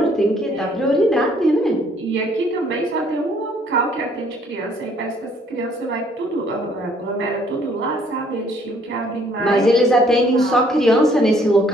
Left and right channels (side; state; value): both; normal; correlation 0.63